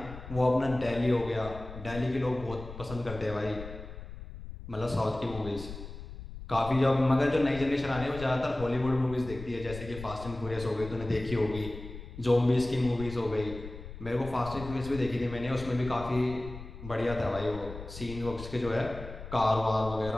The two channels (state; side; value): noise; left; rumble, 12 dB below the sound